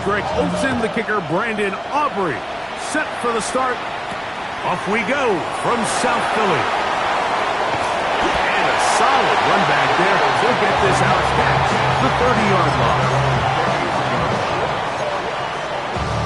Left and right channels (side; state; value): both; identical; correlation 1.00